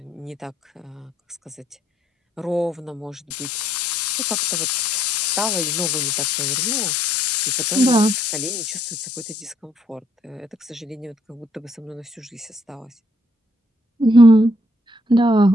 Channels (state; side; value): normal; both; correlation 0.69